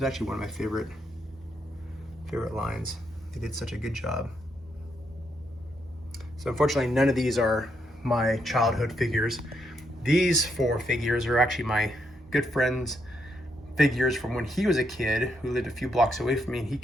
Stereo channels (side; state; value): both; normal; correlation 0.77